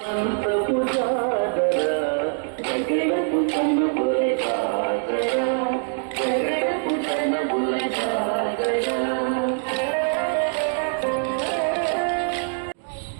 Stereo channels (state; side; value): silent; left; 56 dB below the other